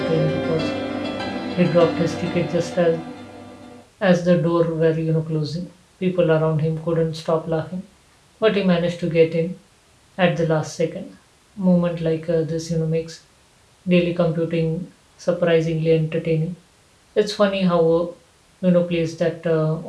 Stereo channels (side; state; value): both; identical; correlation 1.00